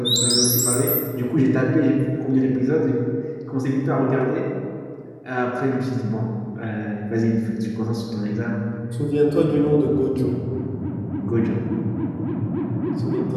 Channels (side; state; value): both; identical; correlation 1.00